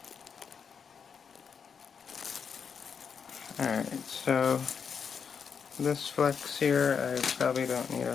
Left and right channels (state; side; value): quieter; right; 6.5 dB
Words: Alright, so this flux here, I probably don't need